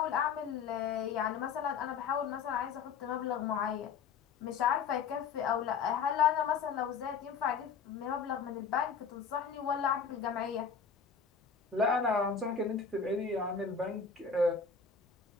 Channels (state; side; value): quieter; right; 6.0 dB